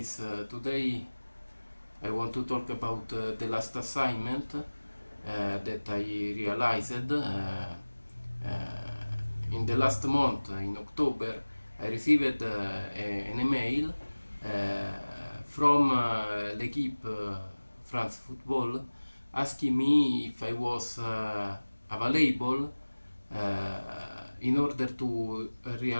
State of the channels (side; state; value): both; inverted; correlation -1.00